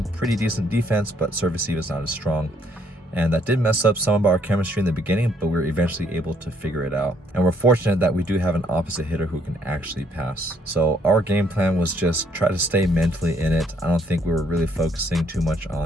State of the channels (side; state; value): both; normal; correlation 0.68